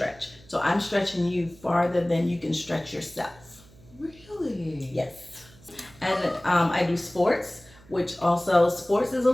So I'm stretching you farther than you can stretch yourself. Really? Yes. And I do sports, which also, sports is a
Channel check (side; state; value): right; noise; hum, 25 dB below the sound